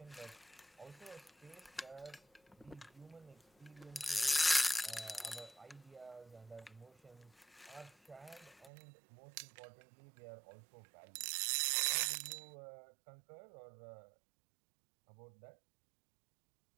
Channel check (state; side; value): drops out; left; at 8.7 s